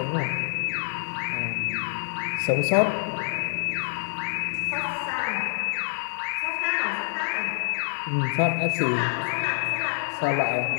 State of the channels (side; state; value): right; silent; 60 dB below the other